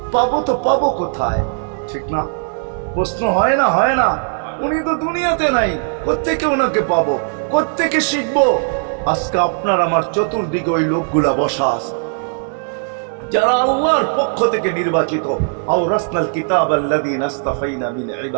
পাবো তো পাবো কোথায়? ঠিক না? প্রশ্ন হয় না? হয় না? উনি তো দুনিয়াতে নাই, কোত্থেকে ওনাকে পাবো, কোত্থেকে শিখবো? আজকে আপনার আমার চতুর্দিকে ওই লোকগুলা বসা আছে যারা আল্লাহর পক্ষ থেকে নির্বাচিত। আওরাসনাল কিতাব আল্লাযীনা ইসতাফাইনা মিন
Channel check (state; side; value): silent; left; digital silence